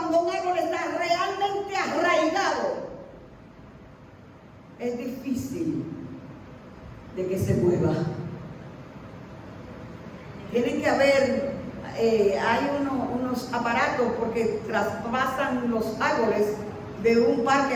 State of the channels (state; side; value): identical; both; correlation 1.00